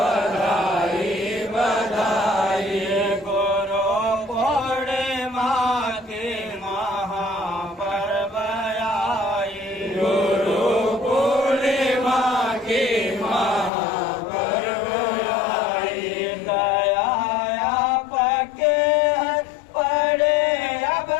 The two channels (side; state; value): right; drops out; at 13.7 s